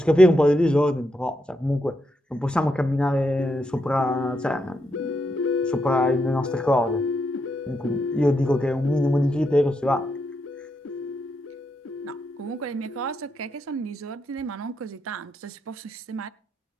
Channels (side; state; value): both; normal; correlation 0.81